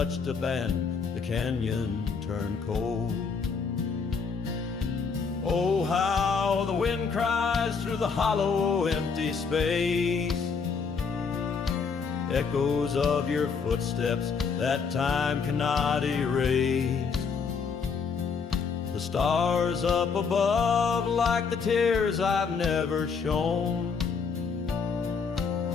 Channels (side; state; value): right; quieter; 5.5 dB